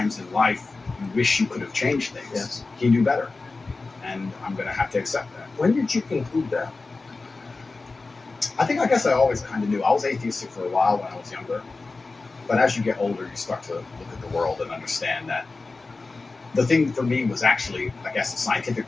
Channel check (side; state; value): right; quieter; 3.7 dB